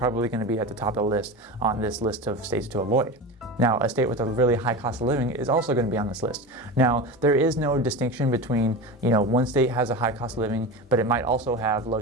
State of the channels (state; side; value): normal; both; correlation 0.26